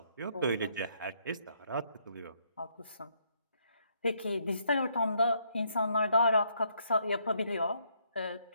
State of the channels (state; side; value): inverted; both; correlation -0.71